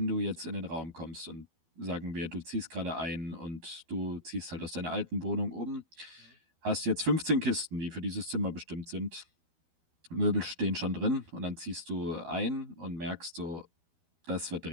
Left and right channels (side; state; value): left; late; 12 ms